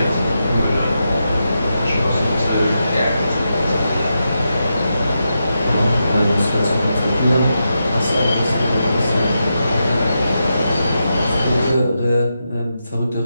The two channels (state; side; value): inverted; both; correlation -0.87